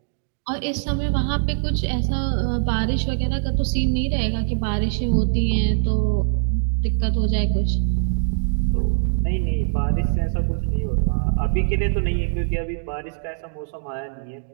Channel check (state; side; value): silent; left; digital silence